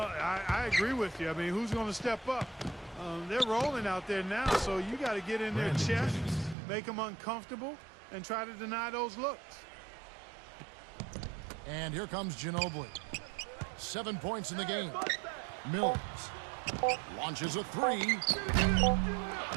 I agree with you. I mean, who's going to step up? They're rolling out there now, so you got to get in their chest, make them uncomfortable, and try to deny those looks. And here comes Ginobili. 7 points in the game. Mills launches a 3.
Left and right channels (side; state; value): left; drops out; at 6.6 s